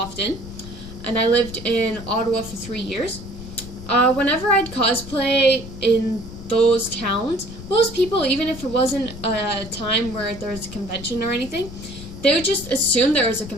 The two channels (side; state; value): left; noise; rumble, 13 dB below the sound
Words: and I lived in Ottawa for 3 years. Whenever I'd cosplay in those towns, most people, even if it wasn't a time where there was a convention or anything, they would just assume there was a